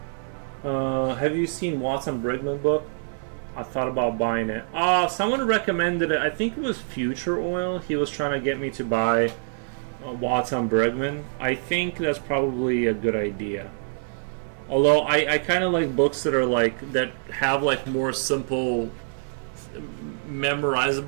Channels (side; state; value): left; silent; 62 dB below the other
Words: Have you seen Watson Brigman book? I thought about buying it. Someone recommended it. I think it was Future Oil. He was trying to get me to buy Watson Brigman. I think that's probably a good idea. Although I kind of like books that are like that have like more simple,